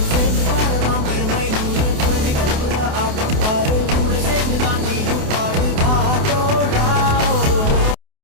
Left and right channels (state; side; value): late; left; 28 ms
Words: சேர்ந்து பாடலாம் பெருமை நூறு குழந்தை கற்புற ஆட்டம் பாரு கூட சேர்ந்துதான்